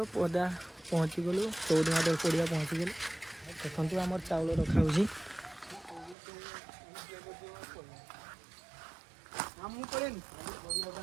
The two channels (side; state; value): left; drops out; at 6.2 s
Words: पदा पहुँची गलु 14 पड़िया पहुँची गलु देखो आमर चाउल रखा हो